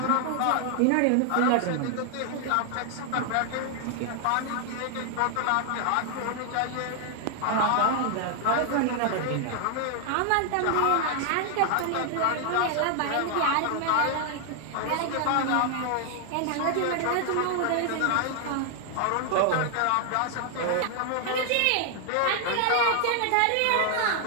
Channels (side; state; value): both; different; correlation 0.00